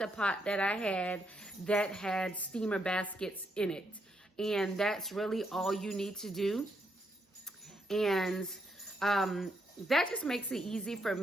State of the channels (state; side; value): normal; both; correlation 0.78